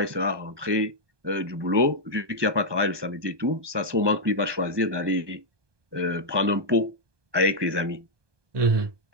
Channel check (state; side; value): late; left; 1.2 ms